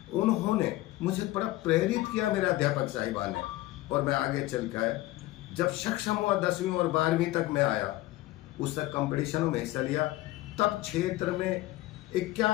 उन्होंने मुझे बड़ा प्रेरित किया, मेरे अध्यापक साहिबान ने। और मैं आगे चल के आया, जब सक्षम हुआ 10वीं और 12वीं तक मैं आया, उस तक कंपटीशनों में हिस्सा लिया। तब क्षेत्र में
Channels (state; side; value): quieter; right; 17.4 dB